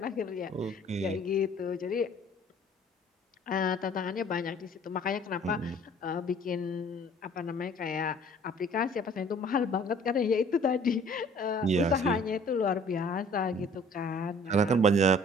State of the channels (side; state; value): both; normal; correlation 0.53